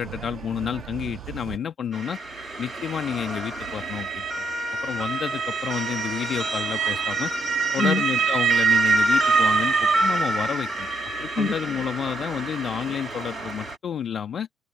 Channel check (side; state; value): both; normal; correlation 0.73